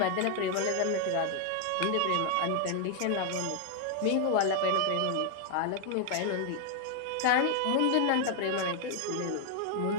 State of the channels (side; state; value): both; different; correlation 0.00